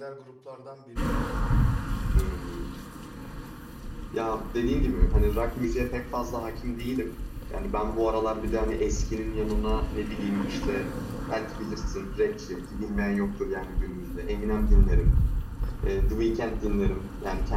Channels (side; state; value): both; identical; correlation 1.00